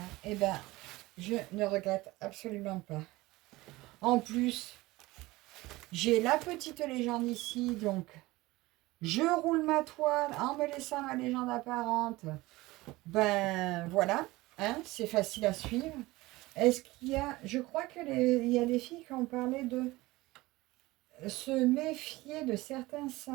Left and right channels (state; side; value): quieter; left; 20.0 dB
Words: je ne regrette absolument pas. En plus, j'ai la petite légende ici, donc je roule ma toile en me laissant ma légende apparente. Voilà, hein, c'est facile à suivre. Est-ce qu'il y a... Je crois qu'il y a des filles qui ont parlé de se méfier de certains